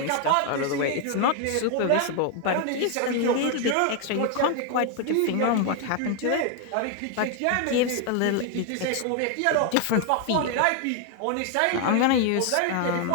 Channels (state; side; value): different; both; correlation 0.01